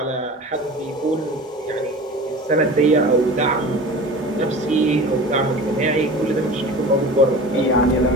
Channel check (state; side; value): normal; both; correlation 0.37